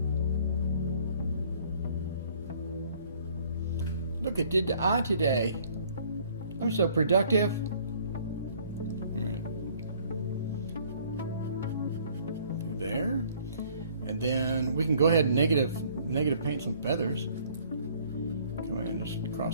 Look, it did the eye today. I'm so productive. Through there. And then we can go ahead and negative paint some feathers. Come in and just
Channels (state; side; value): inverted; both; correlation -0.58